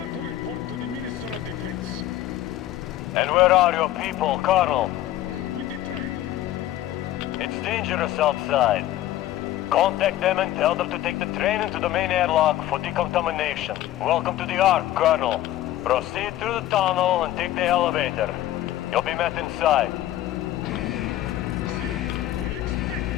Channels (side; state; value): right; quieter; 13.8 dB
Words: to report to the Minister of Defense. And where are your people, Colonel? With the train. It's dangerous outside. Contact them and tell them to take the train into the main airlock for decontamination. Welcome to the Ark, Colonel. Proceed through the tunnel and take the elevator. You'll be met inside. See, we're